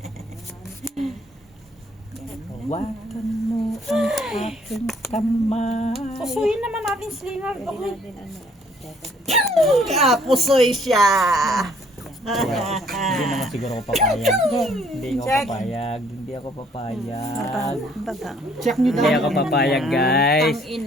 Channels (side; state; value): both; normal; correlation 0.62